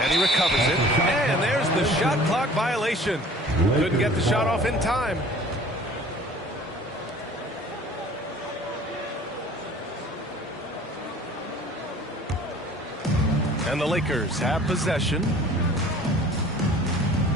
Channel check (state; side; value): normal; both; correlation 0.48